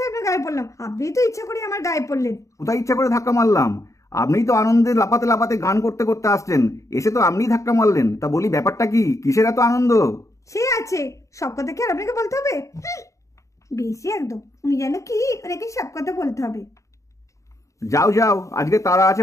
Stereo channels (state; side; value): late; right; 0.15 ms